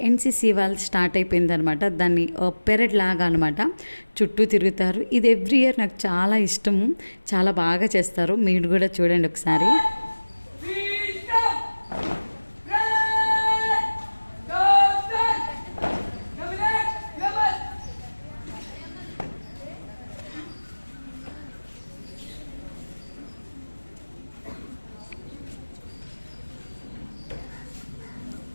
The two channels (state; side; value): inverted; both; correlation -1.00